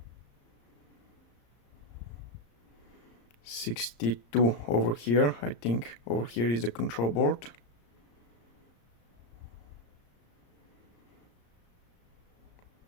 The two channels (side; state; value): right; late; 34 ms